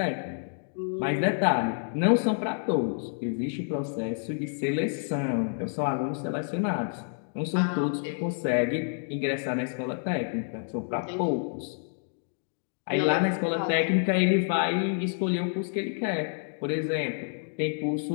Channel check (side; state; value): right; silent; digital silence